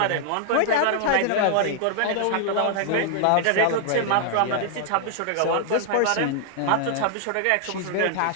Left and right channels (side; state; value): both; different; correlation 0.00